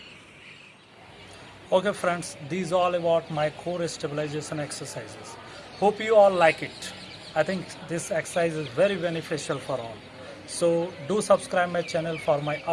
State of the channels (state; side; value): identical; both; correlation 1.00